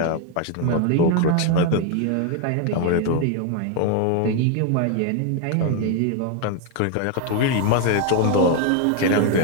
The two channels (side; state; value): both; different; correlation 0.01